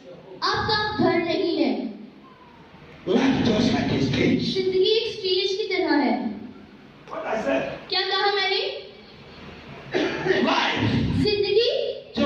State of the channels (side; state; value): both; identical; correlation 1.00